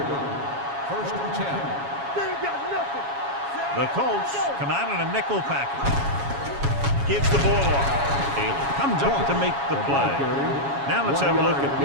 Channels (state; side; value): late; left; 7.2 ms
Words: line. First and 10. The Colts come out in a nickel package. Gives the ball off. Taylor comes up to make the play. Now let's have a look at